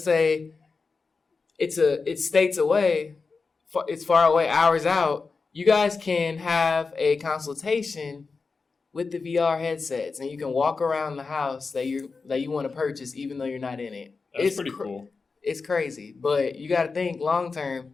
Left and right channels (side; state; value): right; quieter; 4.5 dB